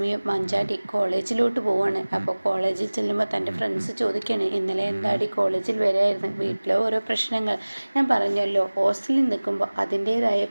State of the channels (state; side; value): inverted; both; correlation -1.00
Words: മഞ്ചാടി കോളേജിലോട്ട് പോവാണ്. അപ്പോൾ കോളേജിൽ ചെല്ലുമ്പോൾ തൻ്റെ ഫ്രണ്ട്സ് ചോദിക്കുകയാണ്, ഇന്നലെ എന്താടി കോളേജിൽ വരായിരുന്നു, വീട്ടിലെ ഓരോ പ്രശ്നങ്ങൾ. ഞാൻ പറഞ്ഞല്ലോ, ഹോസ്റ്റലിൽ നിൽക്കുമ്പോൾ അതിൻ്റേതായ